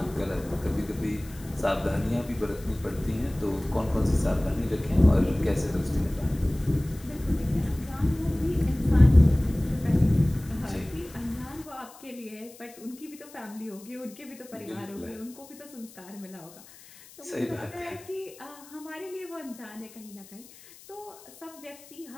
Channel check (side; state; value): left; noise; hiss, 21 dB below the sound